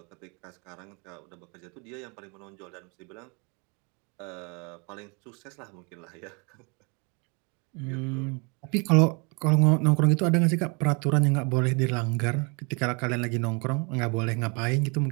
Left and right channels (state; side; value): quieter; left; 32.6 dB